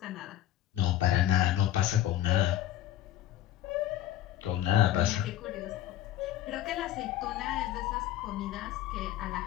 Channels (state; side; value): quieter; right; 12.6 dB